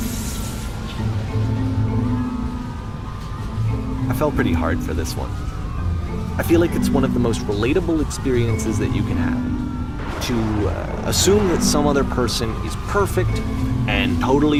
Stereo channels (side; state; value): both; identical; correlation 1.00